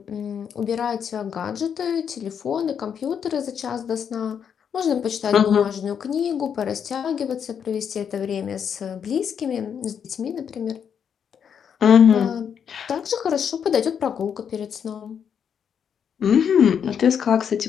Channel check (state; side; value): quieter; right; 7.7 dB